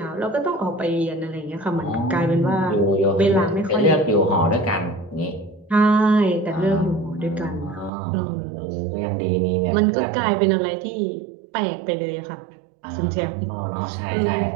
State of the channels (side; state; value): left; drops out; at 7.9 s